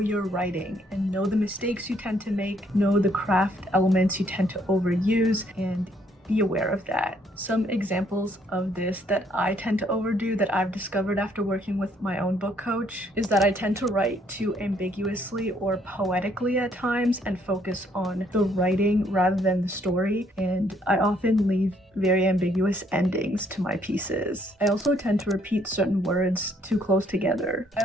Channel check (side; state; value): both; normal; correlation 0.67